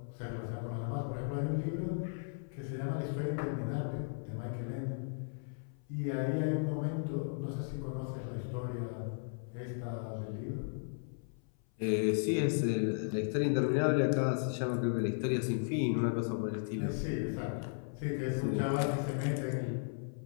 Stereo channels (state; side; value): silent; right; 54 dB below the other